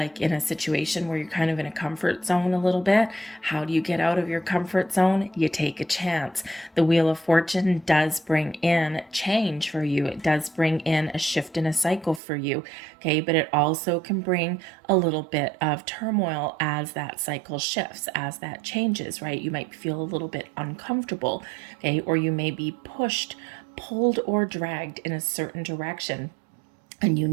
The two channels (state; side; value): drops out; left; at 12.2 s